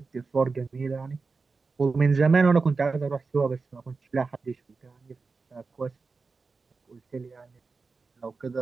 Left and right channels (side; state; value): left; quieter; 4.4 dB